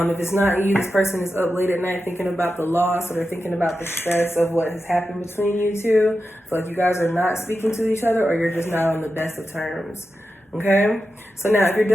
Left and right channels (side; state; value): both; normal; correlation 0.90